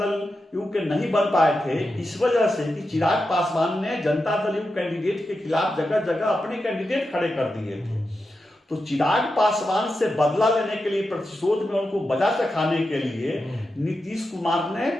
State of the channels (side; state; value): both; normal; correlation 0.89